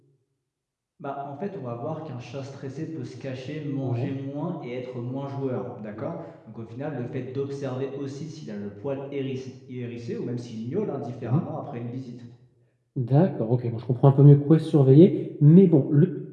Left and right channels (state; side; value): identical; both; correlation 1.00